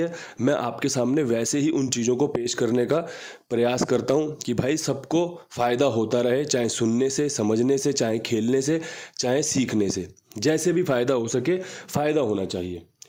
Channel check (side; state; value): both; identical; correlation 1.00